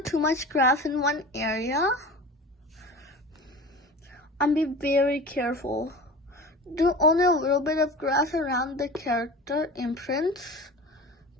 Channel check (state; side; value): normal; both; correlation 0.36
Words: too much grass in one area. And be very careful. Do only a little bit of grass around the character imprints.